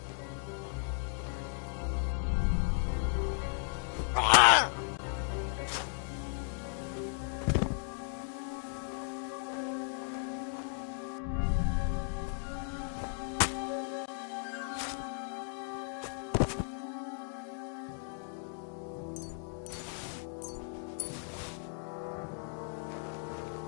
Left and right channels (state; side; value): silent; right; 54 dB below the other